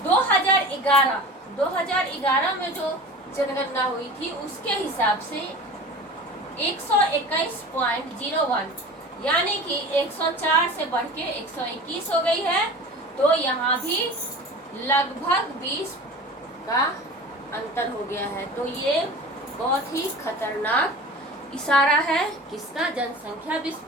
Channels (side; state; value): both; normal; correlation 0.36